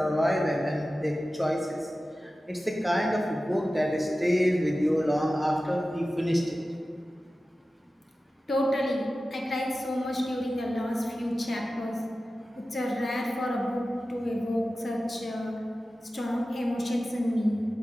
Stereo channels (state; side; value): normal; both; correlation 0.95